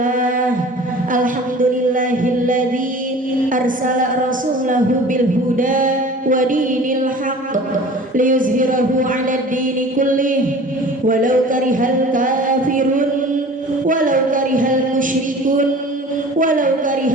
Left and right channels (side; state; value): both; normal; correlation 0.42